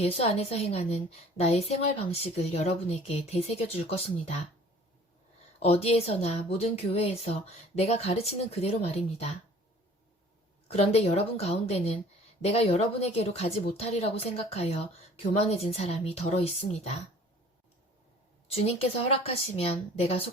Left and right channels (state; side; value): normal; both; correlation 0.50